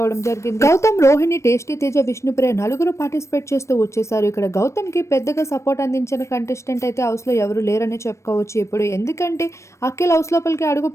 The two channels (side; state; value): right; late; 0.14 ms